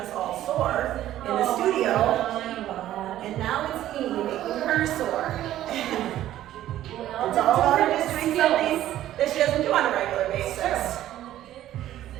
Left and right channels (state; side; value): quieter; left; 13.1 dB